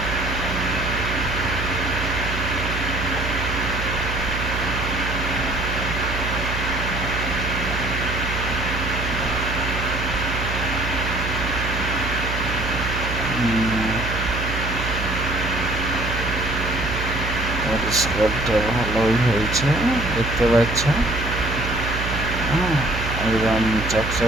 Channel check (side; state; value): right; noise; hum, 4 dB below the sound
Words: পরিষ্কারটা ভালোই হয়েছে দেখতে পাচ্ছ। একদম